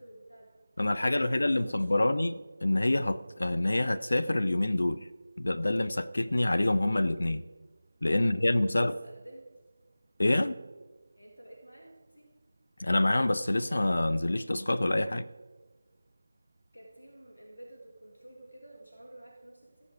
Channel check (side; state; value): both; inverted; correlation -0.99